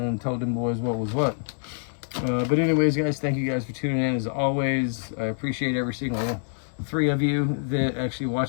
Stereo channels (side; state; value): right; silent; digital silence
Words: told them boys what was what. But anyways, guys, thank you guys for tuning in as always. I appreciate every single 3 of you that actually